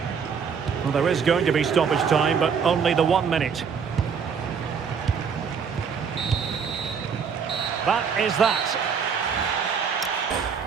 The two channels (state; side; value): quieter; left; 6.5 dB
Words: Well, there is going to be stoppage time, but only the 1 minute. That is that.